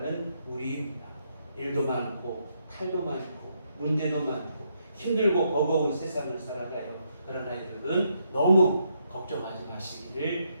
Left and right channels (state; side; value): inverted; both; correlation -0.77